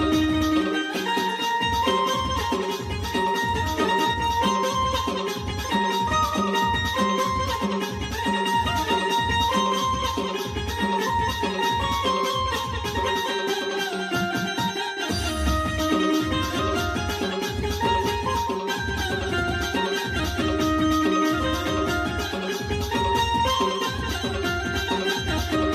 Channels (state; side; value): identical; both; correlation 1.00